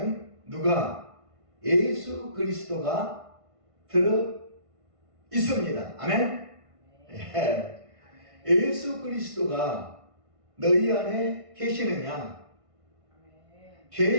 누가? 예수 그리스도가 들어 있습니다. 아멘. 예. 예수 그리스도가 너희 안에 계시느냐?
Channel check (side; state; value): left; late; 1.5 ms